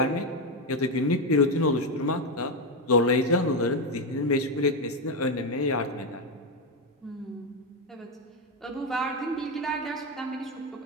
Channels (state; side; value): normal; both; correlation 0.08